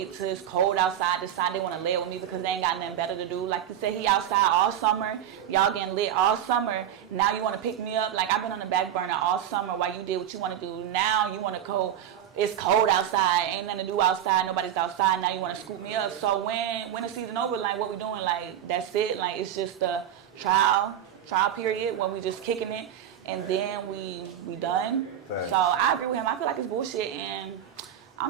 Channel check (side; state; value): left; quieter; 10.3 dB